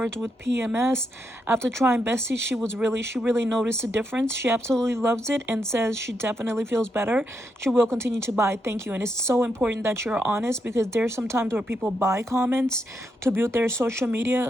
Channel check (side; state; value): both; normal; correlation 0.81